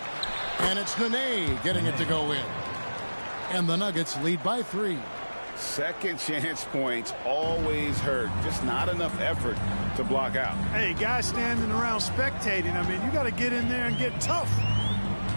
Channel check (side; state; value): both; inverted; correlation -1.00